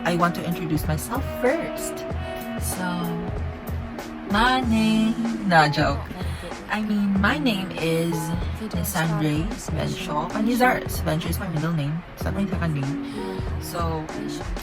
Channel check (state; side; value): identical; both; correlation 1.00